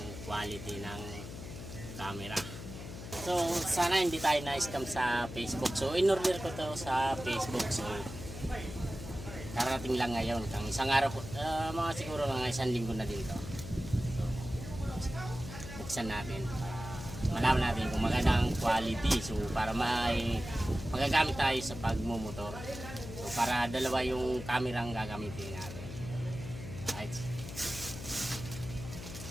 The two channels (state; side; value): noise; left; hum, 10 dB below the sound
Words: quality ng camera. So sana hindi tayo na-scam sa Facebook. So in-order ko to sa Facebook. So karating lang ngayon, kang isang araw, mga siguro mga isang linggo na din to. So, buksan natin para malaman natin kung magandang quality. So para magagamit tayo sa pagmumotor. So para dalawa yung camera ang gagamitin natin. Right.